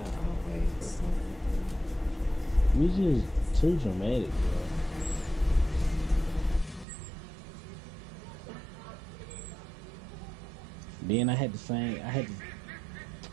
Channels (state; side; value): drops out; left; at 6.9 s